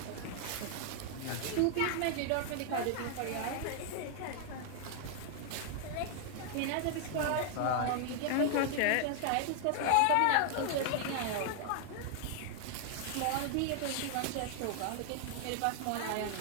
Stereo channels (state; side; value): different; both; correlation 0.00